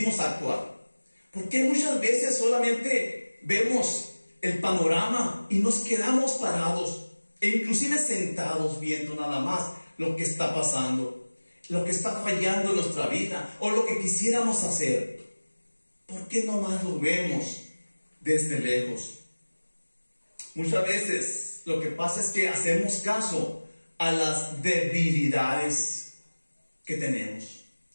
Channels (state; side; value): inverted; both; correlation -1.00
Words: a actuar? ¿Por qué muchas veces solamente vemos el panorama y nos quedamos parados e inclusive sentados viendo nada más lo que está pasando, lo que está fallando en nuestra vida o lo que quisiéramos hacer? ¿Por qué nomás lo vemos desde lejos? Muchas veces lo que pasa es que hacemos caso a las debilidades que tenemos